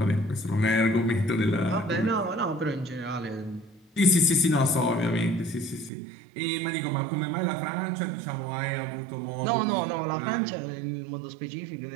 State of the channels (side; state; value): left; drops out; at 5.9 s